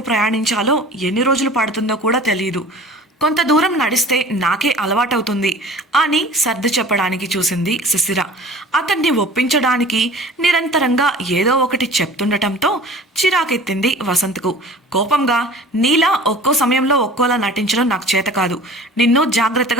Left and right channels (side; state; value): both; normal; correlation 0.43